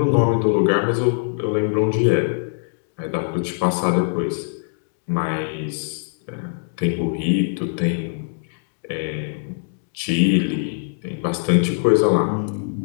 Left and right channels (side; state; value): right; silent; digital silence